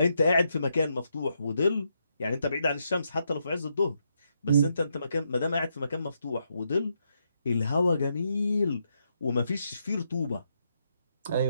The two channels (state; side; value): inverted; both; correlation -0.80